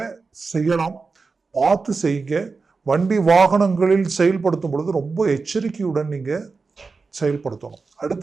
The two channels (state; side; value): quieter; left; 4.4 dB